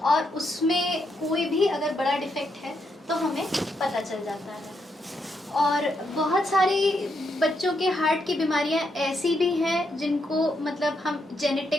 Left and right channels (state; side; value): normal; both; correlation 0.79